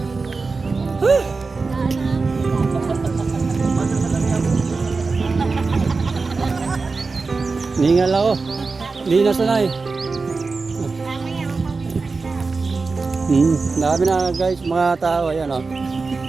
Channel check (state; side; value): quieter; left; 4.2 dB